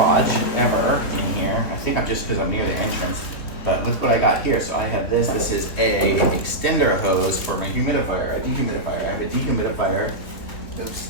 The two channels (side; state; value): right; late; 3.4 ms